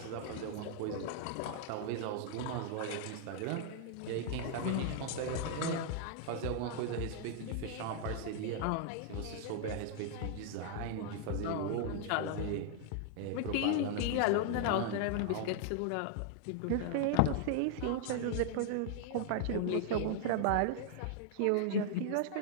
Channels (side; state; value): both; different; correlation -0.01